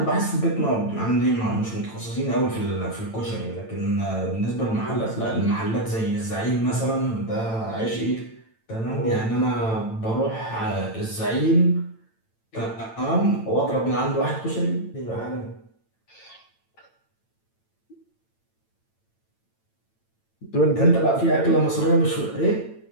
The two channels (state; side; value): late; right; 9.0 ms